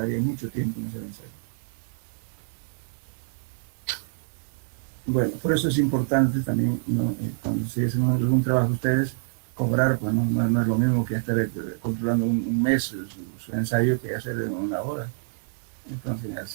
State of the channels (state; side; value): silent; left; digital silence